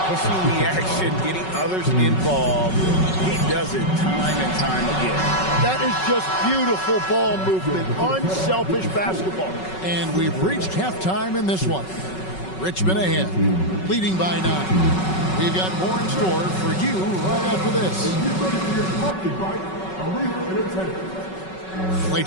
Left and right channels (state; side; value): late; right; 5.3 ms